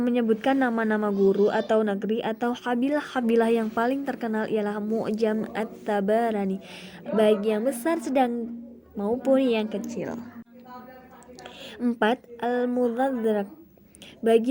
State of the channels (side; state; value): both; identical; correlation 1.00